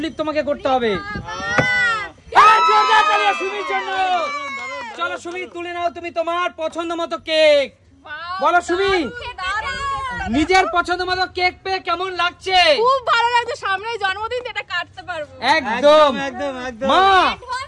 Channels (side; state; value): both; identical; correlation 1.00